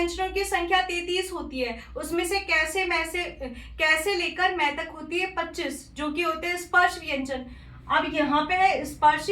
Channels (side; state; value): both; identical; correlation 1.00